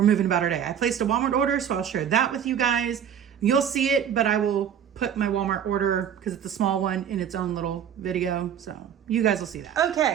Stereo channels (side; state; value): left; quieter; 8.8 dB